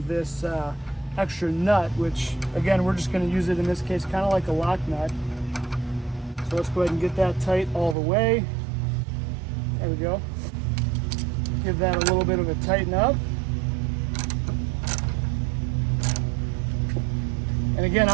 this extra nut, which again, we're just gonna use it in this case, kind of like a lock nut. So let's go ahead and get that tight all the way. There we go. Give that a little bit of a tighten up. And again,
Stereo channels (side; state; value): left; drops out; at 8.0 s